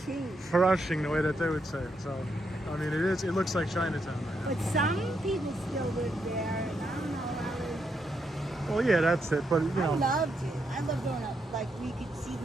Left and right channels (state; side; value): normal; both; correlation 0.80